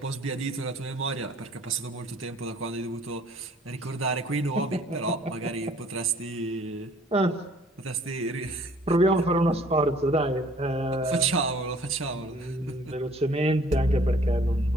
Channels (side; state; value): both; normal; correlation 0.56